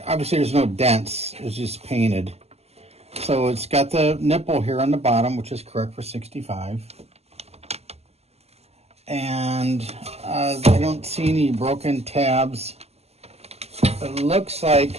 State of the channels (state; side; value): late; left; 0.30 ms